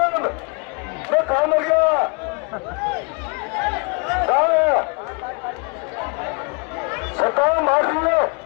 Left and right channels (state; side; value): quieter; right; 33.4 dB